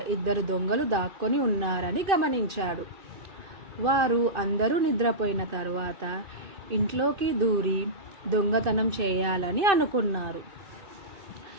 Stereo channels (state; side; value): late; left; 2.5 ms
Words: ఇద్దరు దొంగలు దాక్కొని ఉన్నారని గమనించాడు. వారు అందరూ నిద్రపోయిన తర్వాత ఇంట్లోకి దూరి దొంగతనం చేయాలని అనుకున్నారు.